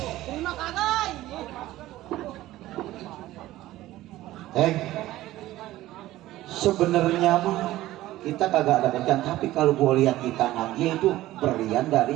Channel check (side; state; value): left; quieter; 15.8 dB